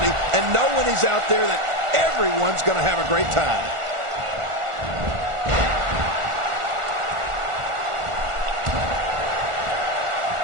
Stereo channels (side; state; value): left; late; 1.4 ms